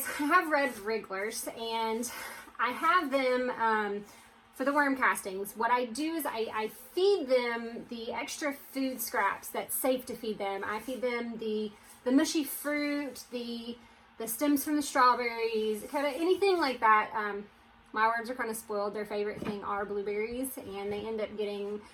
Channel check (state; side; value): identical; both; correlation 1.00